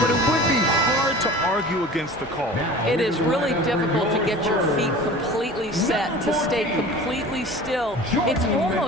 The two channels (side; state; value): both; normal; correlation 0.40